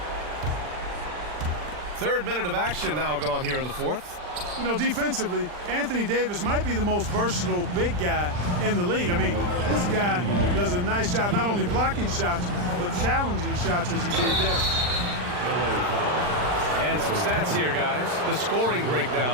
Third minute of action now gone here in the 4th. You know, defensively, Anthony Davis might be the most versatile big guy in the league. I mean, this guy does a nice job not only blocking shots, but challenging shots as he did there. And some stats here, guys. The scoring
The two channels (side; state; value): left; late; 40 ms